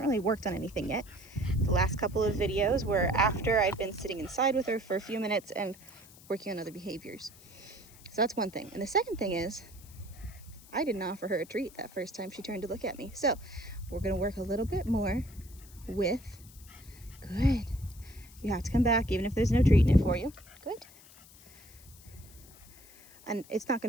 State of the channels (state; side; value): noise; left; hiss, 22 dB below the sound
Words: really worked on anything yet. The last couple of videos were after I'd been sitting inside with her for a few minutes and working on other behaviors. So that's one thing. And the second thing is, I didn't offer her a treat that first time she turned to look at me. So we're gonna work a little bit more with, good. You have to come back even if there's no treat in it for you. Good. And it's not